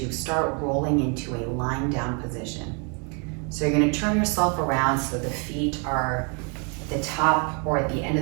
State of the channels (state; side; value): quieter; left; 36.1 dB